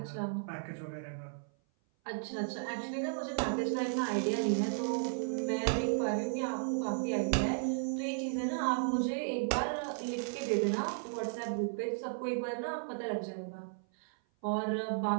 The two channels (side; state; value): left; silent; 55 dB below the other